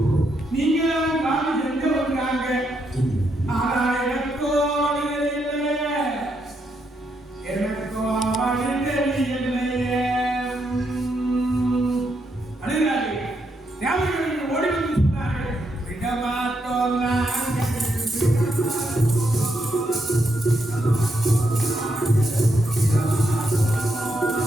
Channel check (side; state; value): both; normal; correlation 0.79